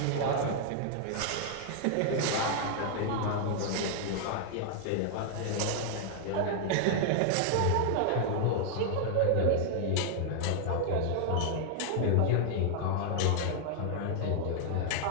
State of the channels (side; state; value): both; different; correlation 0.00